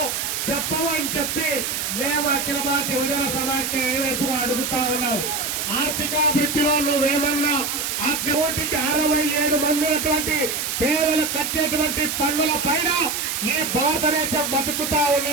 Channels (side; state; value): right; noise; hiss, 2 dB below the sound